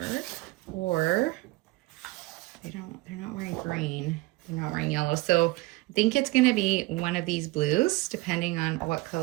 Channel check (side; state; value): left; quieter; 20.8 dB